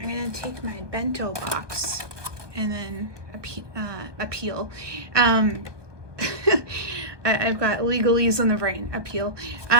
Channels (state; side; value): late; left; 1.2 ms